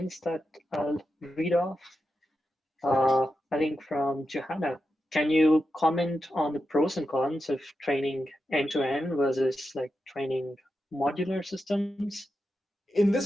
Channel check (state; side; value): normal; both; correlation 0.88